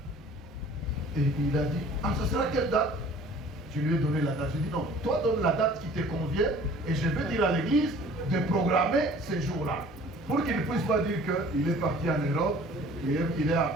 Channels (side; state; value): both; normal; correlation 0.50